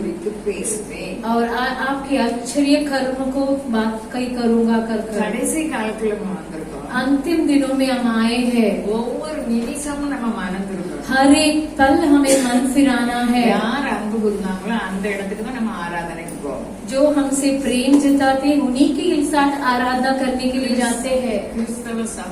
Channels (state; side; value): identical; both; correlation 1.00